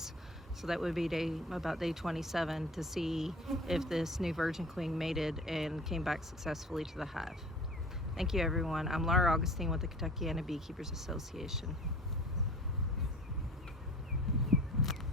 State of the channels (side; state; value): both; normal; correlation 0.43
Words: So that would be about day 27 to see if this new virgin queen mated and came back successfully to the hive. Thank you, everyone. I'm Laura Augustine with the Kentuckiana Beekeepers Association.